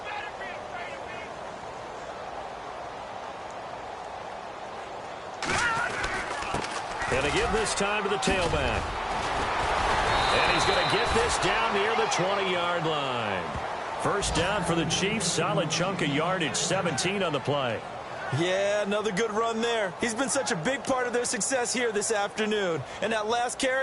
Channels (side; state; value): both; identical; correlation 1.00